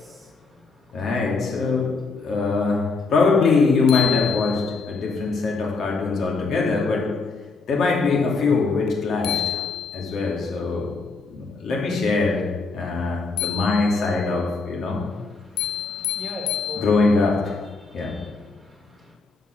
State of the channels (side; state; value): right; quieter; 4.1 dB